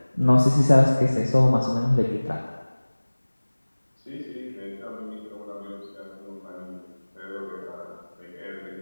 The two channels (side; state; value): both; inverted; correlation -1.00